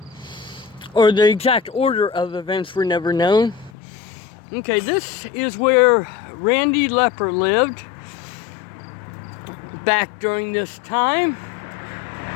or the exact order of events were never known. Okay, this is where Randy Lepper lived back during this time.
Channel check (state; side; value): drops out; right; at 3.7 s